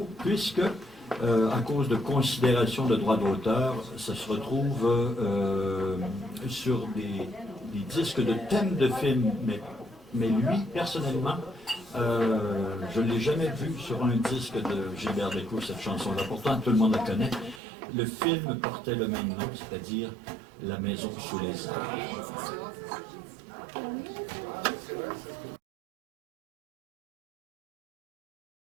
puisque, à cause de considérations de droits d'auteur, ça se retrouve sur des disques de thèmes de films. Mais lui, personnellement, je ne l'ai jamais vu sur un disque de Gilbert Bécaud, cette chanson-là. Pourtant, tout le monde la connaît. Le film portait le même nom, c'est-à-dire La maison sous les arbres.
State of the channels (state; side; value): drops out; left; at 17.6 s